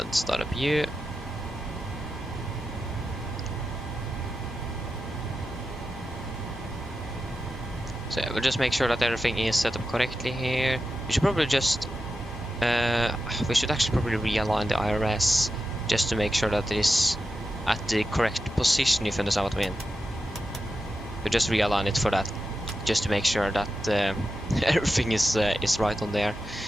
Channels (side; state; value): both; normal; correlation 0.90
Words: start up you. So yeah, we'll just make sure that everything is set up correctly here. We should probably just we should actually probably realign the IRS just to make sure that it is at the correct position, if you understand what I mean. We'll just realign it for that, just to make sure that everything is right on there.